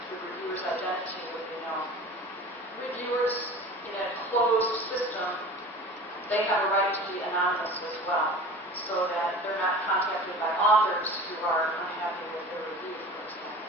identity would be known. Reviewers in a closed system, they have a right to be anonymous as well, so that they're not contacted by authors who are unhappy with their review, for example.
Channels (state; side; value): normal; both; correlation 0.38